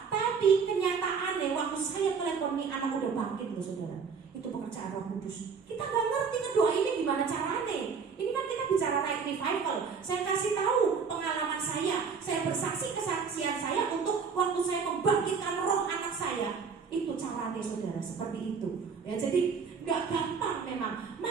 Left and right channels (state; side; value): quieter; left; 5.7 dB